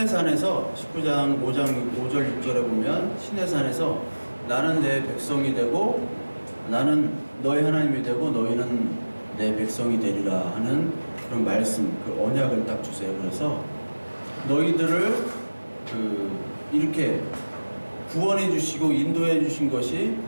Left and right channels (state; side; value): inverted; both; correlation -1.00